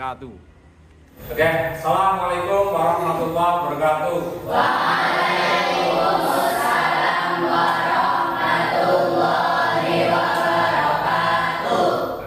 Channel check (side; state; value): both; identical; correlation 1.00